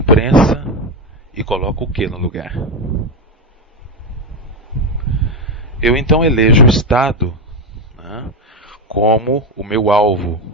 e coloco o que no lugar? Eu então elejo o Estado, né, como o meu alvo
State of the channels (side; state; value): both; normal; correlation 0.10